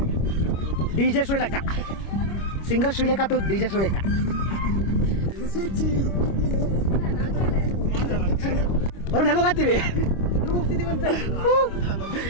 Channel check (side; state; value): right; late; 25 ms